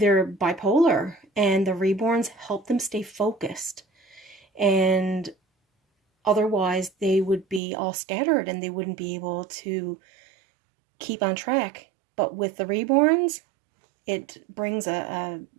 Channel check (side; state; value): left; drops out; at 7.6 s